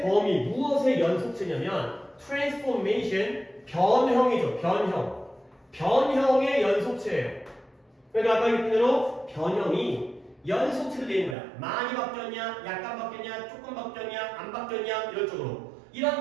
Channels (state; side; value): drops out; left; at 11.4 s